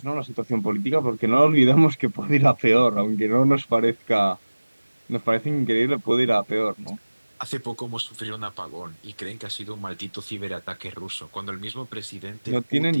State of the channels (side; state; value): both; inverted; correlation -1.00